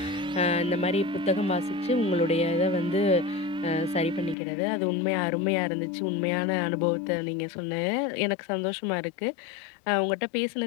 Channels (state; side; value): drops out; right; at 4.4 s